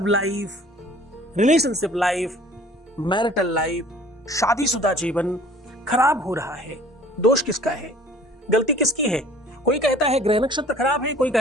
life, relationship life, marital life, शादीशुदा जीवन खराब हो रहा है, दोष किसका है? गलती किसकी है? कोई कहता है ग्रह नक्षत्र खराब है, कोई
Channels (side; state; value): both; normal; correlation 0.51